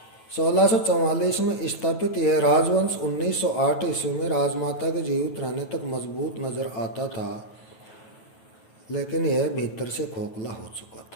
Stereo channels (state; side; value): late; right; 9.2 ms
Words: 1644 में स्थापित यह राजवंश 1908 ईस्वी में राजमाता के जीवित रहने तक मजबूत नजर आता था, लेकिन यह भीतर से खोखला हो चुका